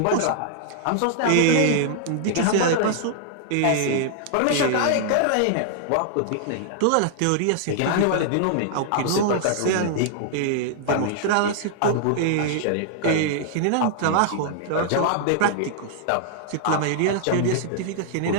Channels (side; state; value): both; different; correlation -0.01